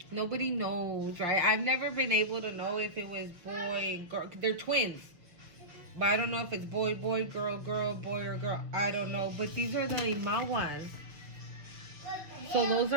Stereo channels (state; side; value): late; left; 6.0 ms